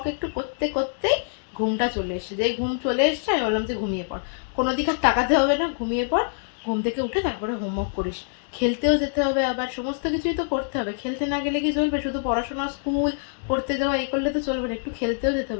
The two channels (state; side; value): silent; right; digital silence